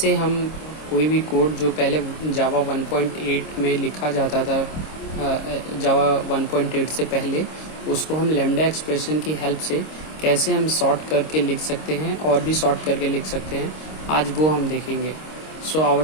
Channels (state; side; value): late; right; 26 ms